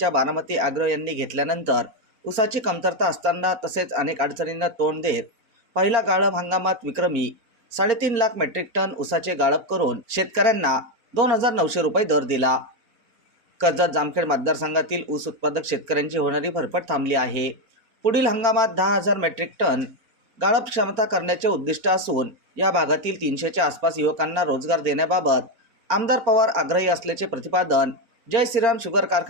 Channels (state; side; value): late; left; 4.3 ms